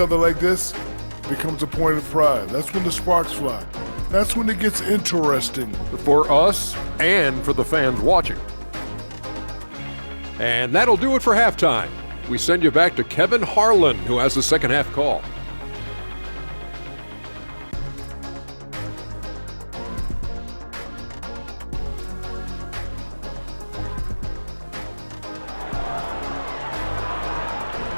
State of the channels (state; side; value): inverted; both; correlation -1.00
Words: like this, it becomes a point of pride. That's when the sparks fly. That's when it gets interesting. For us and for the fans watching. And that'll do it for halftime. We send you back to Kevin Harlan, who has the second half call.